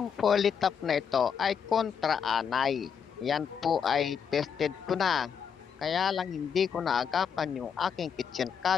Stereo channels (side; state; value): right; quieter; 7.2 dB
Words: Polytop na ito ay kontra-anay. Yan po ay tested ko na. Kaya lang hindi ko naagapan yung aking kitchen